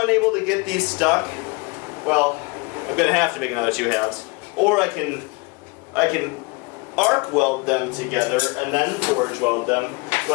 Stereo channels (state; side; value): quieter; right; 27.8 dB